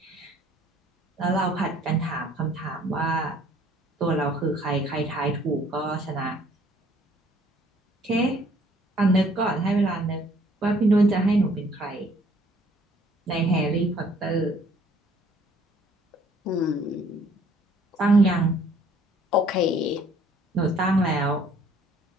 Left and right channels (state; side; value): normal; both; correlation 0.59